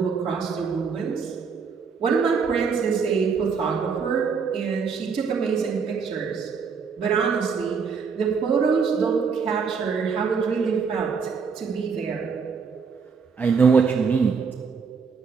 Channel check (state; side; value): quieter; left; 5.7 dB